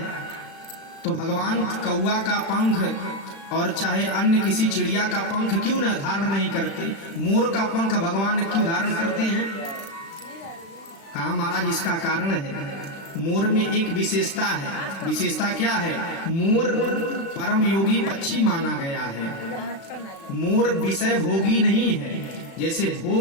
तो भगवान कौआ का पंख और चाहे अन्य किसी चिड़िया का पंख क्यों न धारण नहीं करते? मोर का पंख भगवान क्यों धारण करते हैं? कहा महाराज इसका कारण है, मोर में एक विशेषता है। विशेषता क्या है? मोर परम योगी पक्षी माना गया है। मोर विषय भोगी नहीं है। जैसे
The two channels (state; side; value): late; right; 36 ms